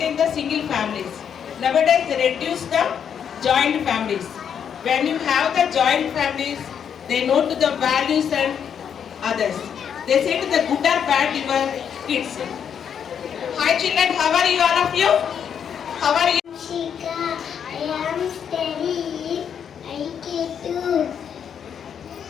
the single families. Nowadays they reduce the joint families. When you have the joint families, they know to the values and others. They say to the good or bad your kids. Hi children, how are you all of you? How are you? Shika, I am steady. I get to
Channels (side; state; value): right; quieter; 8.0 dB